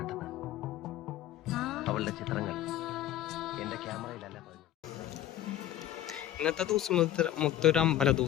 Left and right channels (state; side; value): quieter; right; 12.3 dB